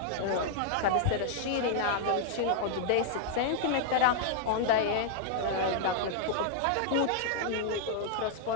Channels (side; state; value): both; different; correlation -0.01